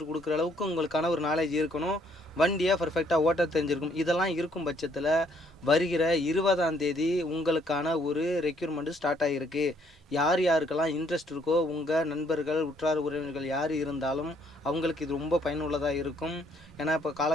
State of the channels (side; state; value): both; normal; correlation 0.66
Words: கொடுக்குற அளவுக்கு உங்களுக்கான ஒரு நாலேஜ் இருக்கணும். வண்டியை பர்ஃபெக்டாக ஓட்ட தெரிஞ்சிருக்கும். இதெல்லாம் இருக்கும் பட்சத்தில் வருகிற 20ஆம் தேதி உங்களுக்கான ஒரு ரெக்யூர்மெண்ட்டு ஸ்டார்ட் ஆகிருக்கு. யார் யாருக்கெல்லாம் இன்ட்ரெஸ்ட் இருக்கோ உங்கள் நண்பர்கள் உற்றார் உறவினர்கள் யார் இருந்தாலும் அவங்களுக்கு இது ரொம்ப பயனுள்ளதாக இருக்கும். ஏன்னா இப்போ